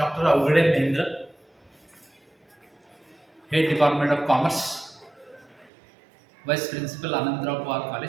Awaghade Mahendra, Head Department of Commerce, Vice Principal Anandra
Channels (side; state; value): left; drops out; at 5.7 s